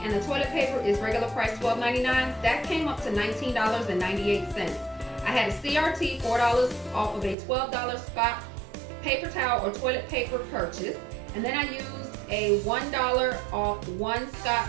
and the toilet paper is regular price $12.99. That came up to $19.98. I had a CRT, $4 off of a $12 Scott paper towel or toilet paper purchase, and then I used a $1 off 1 Scott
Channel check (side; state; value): left; drops out; at 7.4 s